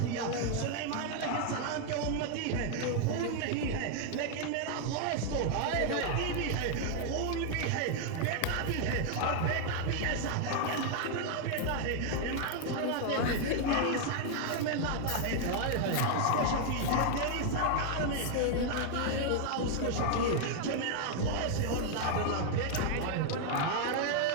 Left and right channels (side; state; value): both; different; correlation 0.00